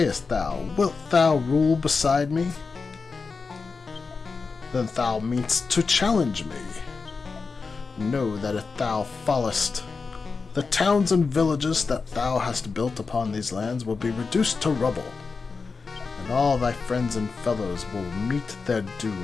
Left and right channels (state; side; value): quieter; right; 4.6 dB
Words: thou? Wilt thou rule beside me? Then thou meanst to challenge me. Know that if thou fallest, the towns and villages that thou hast built upon these lands will be reduced to rubble, and all thy friends and fellows will meet their